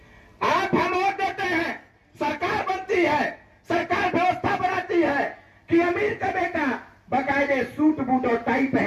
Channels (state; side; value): identical; both; correlation 1.00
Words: आप हम वोट देते हैं, सरकार बनती है, सरकार व्यवस्था बनाती है, कि अमीर का बेटा बाकायदे सूट बूट और टाई